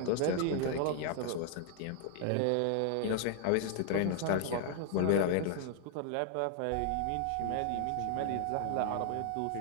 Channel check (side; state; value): both; different; correlation 0.00